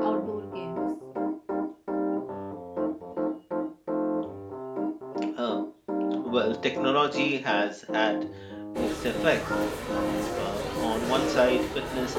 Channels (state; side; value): identical; both; correlation 1.00